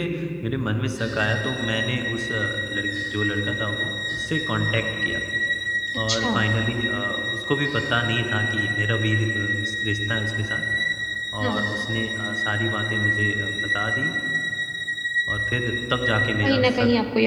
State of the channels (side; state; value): both; identical; correlation 1.00